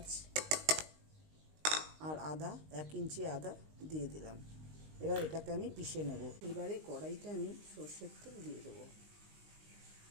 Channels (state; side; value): late; left; 19 ms